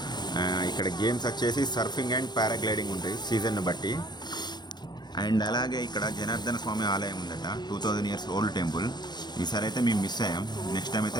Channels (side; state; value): right; late; 0.21 ms